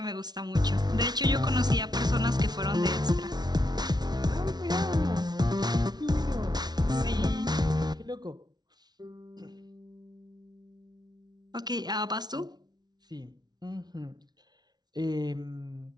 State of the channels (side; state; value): left; late; 0.19 ms